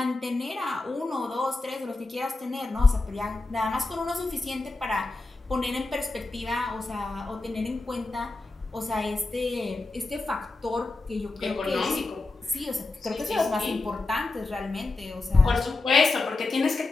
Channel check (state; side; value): quieter; right; 3.3 dB